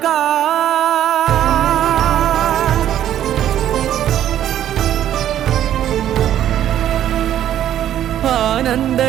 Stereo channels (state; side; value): quieter; left; 11.3 dB